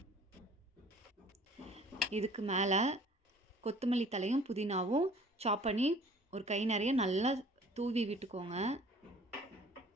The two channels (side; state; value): both; normal; correlation 0.51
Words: இதுக்கு மேலே கொத்தமல்லி தலையும் புதினாவும் சாப் பண்ணி ஒரு கை நிறைய நல்லா தூவி விட்டுக்கோங்க.